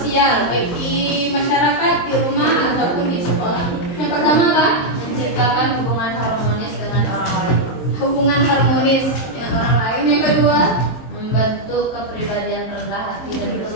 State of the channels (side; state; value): right; late; 24 ms